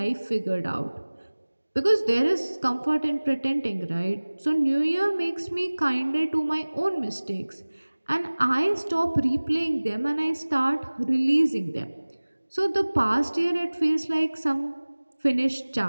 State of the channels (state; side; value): inverted; both; correlation -1.00